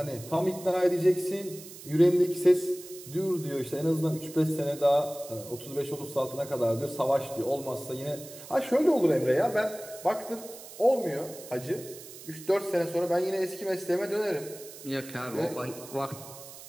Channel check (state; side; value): noise; right; hiss, 16 dB below the sound